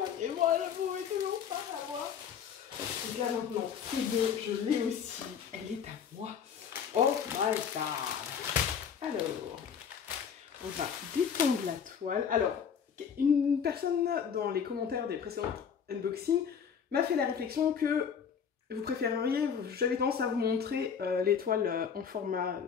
et moi je pouvais toujours pas l'avoir. » Donc là maintenant, c'est bon, je l'ai aussi, elle est à moi. Oh my god. Alors, on va détendre la toile. Alors, une personne dans les commentaires des précédents unboxings m'a fait la réflexion que vous préféreriez, j'avais tendance à vous montrer les toiles en format,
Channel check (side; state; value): right; quieter; 7.3 dB